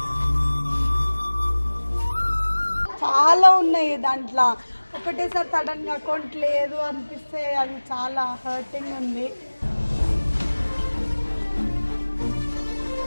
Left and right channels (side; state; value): both; inverted; correlation -1.00